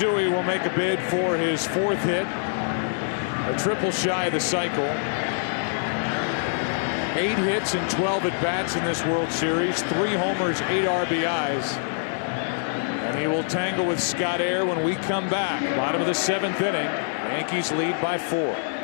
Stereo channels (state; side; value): silent; right; 62 dB below the other